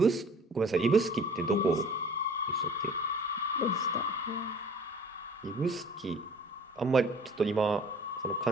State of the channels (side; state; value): both; normal; correlation 0.49